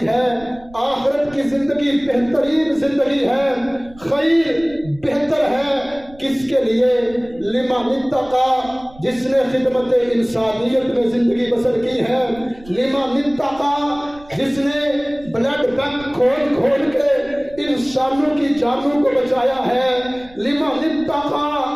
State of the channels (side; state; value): right; noise; rumble, 22 dB below the sound